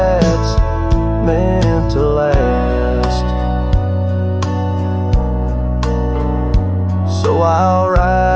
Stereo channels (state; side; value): identical; both; correlation 1.00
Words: meant to last. So I'll